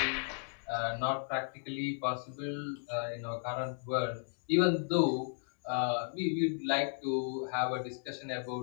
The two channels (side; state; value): right; silent; digital silence